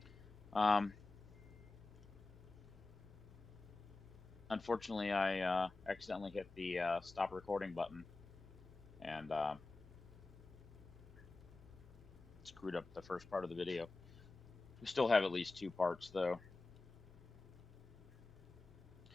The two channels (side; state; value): right; quieter; 3.4 dB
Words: Um, Unfortunately, I accidentally hit the stop recording button and screwed up the first part of the video. We still have at least two parts though.